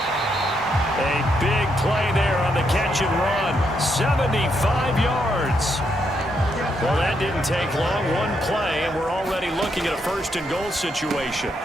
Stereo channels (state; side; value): normal; both; correlation 0.78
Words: A big play there on the catch and run. 75 yards. Well, that didn't take long. One play, and we're already looking at a first and goal situation.